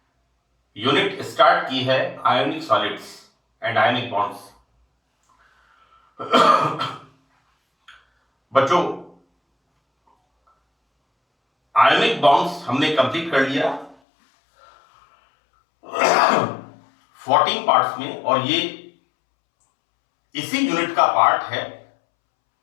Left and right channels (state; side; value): drops out; right; at 14.0 s